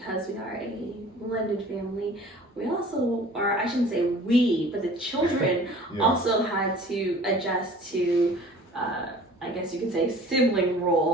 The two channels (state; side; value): normal; both; correlation 0.47